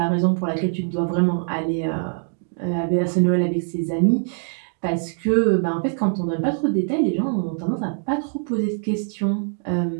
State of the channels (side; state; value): left; silent; 63 dB below the other